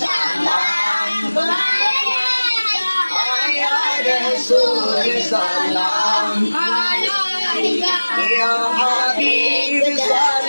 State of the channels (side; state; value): both; inverted; correlation -1.00